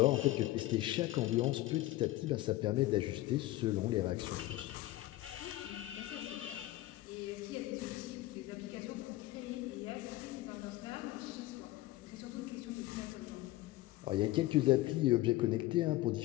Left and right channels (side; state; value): right; quieter; 17.0 dB